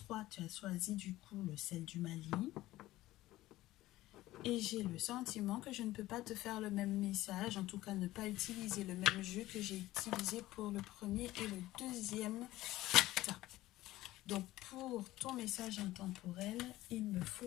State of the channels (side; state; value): right; quieter; 16.5 dB